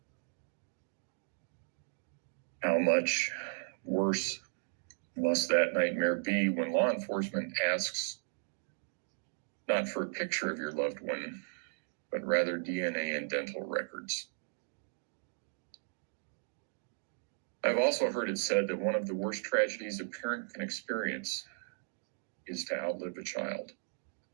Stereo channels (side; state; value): left; silent; digital silence